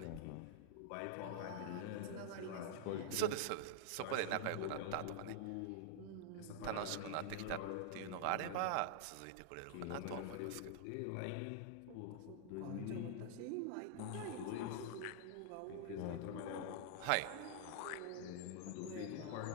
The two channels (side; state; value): both; different; correlation -0.01